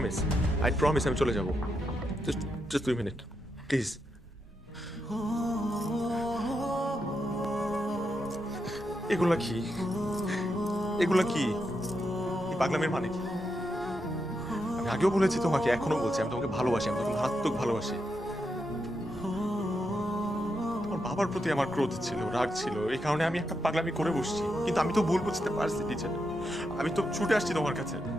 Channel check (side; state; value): both; normal; correlation 0.84